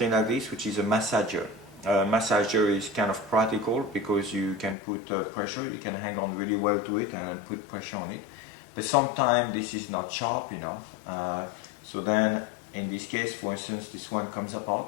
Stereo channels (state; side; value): drops out; right; at 4.8 s